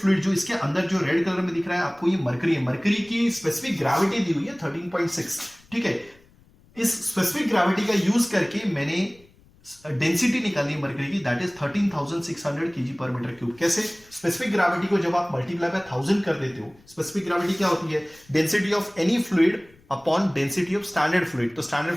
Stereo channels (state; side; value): noise; left; rumble, 29 dB below the sound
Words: जो इसके अंदर जो रेड कलर में दिख रहा है आपको, ये मरकरी है। मरकरी की स्पेसिफिक ग्रेविटी दी हुई है 13.6। ठीक है, इस स्पेसिफिक ग्रेविटी का यूज करके मैंने डेंसिटी निकाली मरकरी की, that is 13,600 kg per metre cube. कैसे? स्पेसिफिक ग्रेविटी को जब आप मल्टीप्लाई बाय 1000 कर देते हो, स्पेसिफिक ग्रेविटी क्या होती है, density of any fluid upon density of standard fluid. तो स्टैंडर्ड